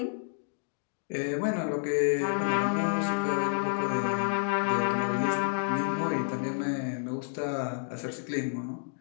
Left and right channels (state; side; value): silent; right; 58 dB below the other